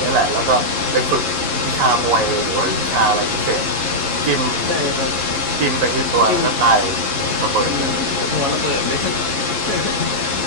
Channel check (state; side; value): late; left; 11 ms